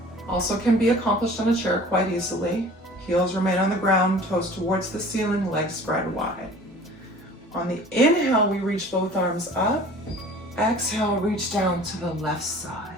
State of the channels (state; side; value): normal; both; correlation 0.45